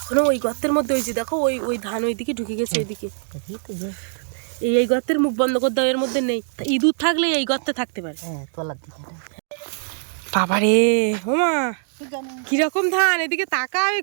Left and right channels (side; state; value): left; silent; digital silence